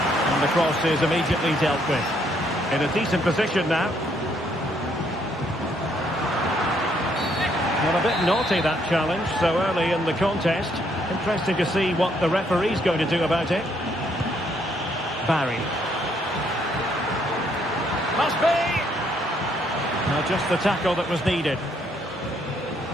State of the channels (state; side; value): normal; both; correlation 0.70